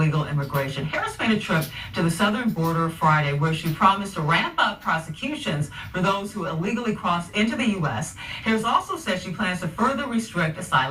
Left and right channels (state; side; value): identical; both; correlation 1.00